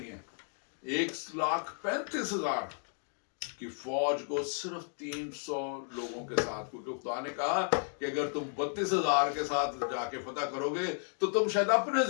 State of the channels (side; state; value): right; silent; 55 dB below the other